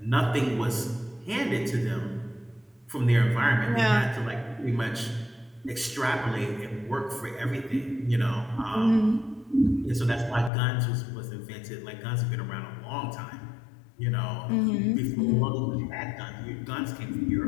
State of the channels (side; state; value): right; drops out; at 10.5 s